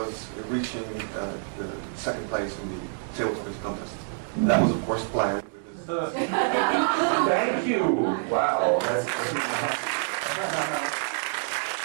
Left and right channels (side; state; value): left; silent; digital silence